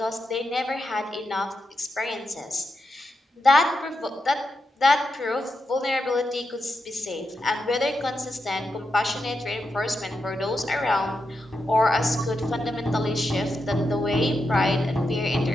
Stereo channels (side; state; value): both; normal; correlation 0.86